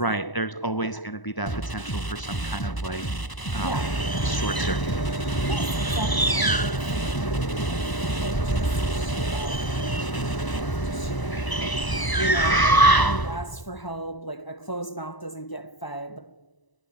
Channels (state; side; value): late; right; 1.0 ms